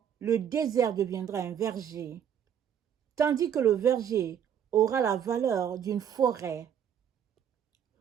le désert deviendra un verger, tandis que le verger aura la valeur d'une forêt.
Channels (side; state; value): left; quieter; 8.9 dB